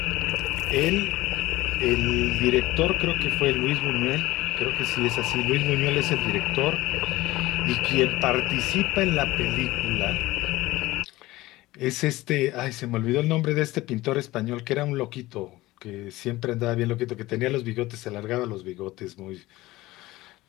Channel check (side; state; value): right; quieter; 18.3 dB